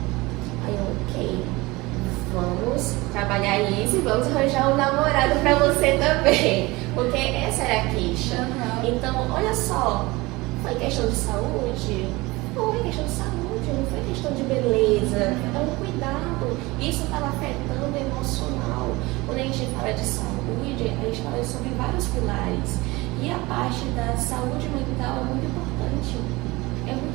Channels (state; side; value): quieter; left; 22.1 dB